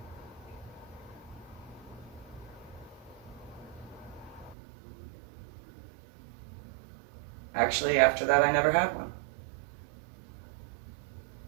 actually, after that, I never had one.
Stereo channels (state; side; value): drops out; left; at 4.5 s